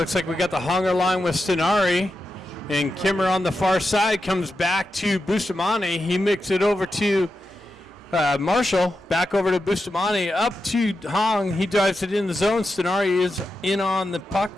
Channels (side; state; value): both; normal; correlation 0.89